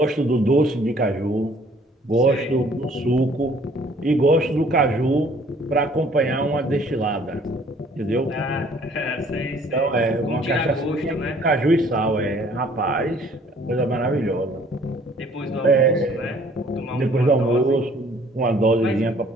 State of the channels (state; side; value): normal; both; correlation 0.58